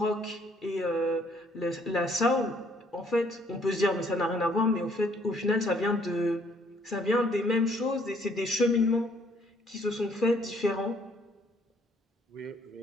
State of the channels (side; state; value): both; normal; correlation 0.64